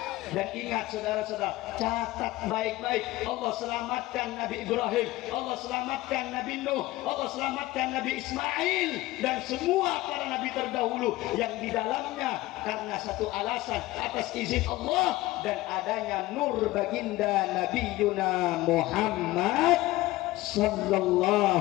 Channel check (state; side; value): quieter; right; 18.1 dB